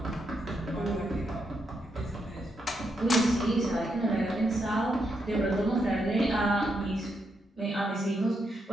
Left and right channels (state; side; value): normal; both; correlation 0.81